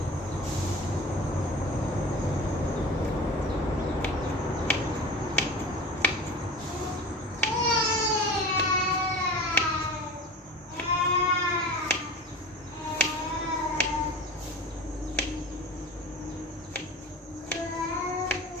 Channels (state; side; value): normal; both; correlation 0.36